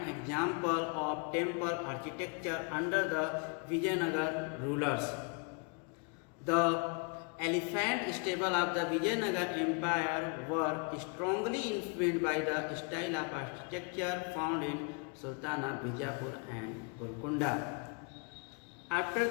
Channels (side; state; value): right; quieter; 36.4 dB